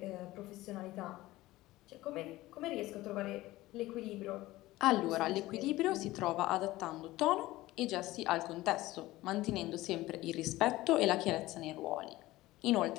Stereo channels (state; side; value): quieter; right; 17.7 dB